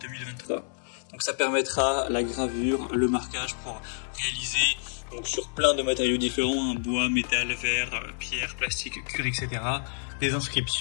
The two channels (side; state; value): right; silent; digital silence